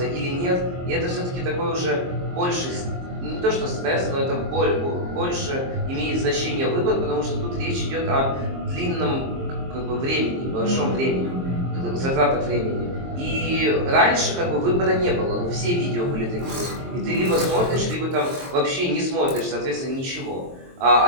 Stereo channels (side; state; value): left; late; 23 ms